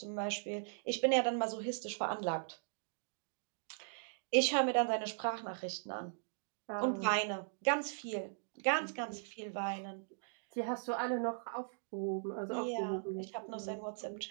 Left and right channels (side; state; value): left; silent; digital silence